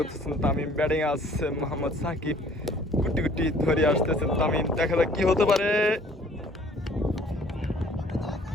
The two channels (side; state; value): both; normal; correlation 0.55